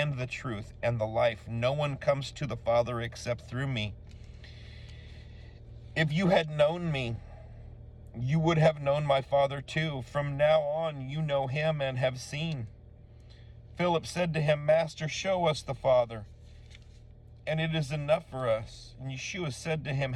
the truth and the life. No one comes to the Father except through me. If you had known me, you would have known my Father too. From now on, you know him and have seen. Philip said to him, Master, show us the Father, and it is enough for us. And Yeshua said to him,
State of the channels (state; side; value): identical; both; correlation 1.00